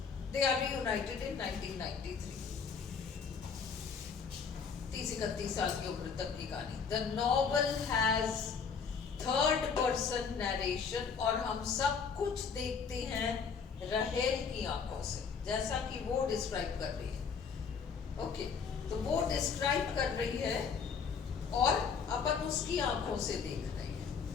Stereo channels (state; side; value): quieter; right; 6.0 dB